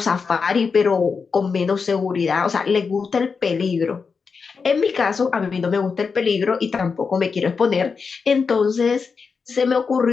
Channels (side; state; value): right; quieter; 5.3 dB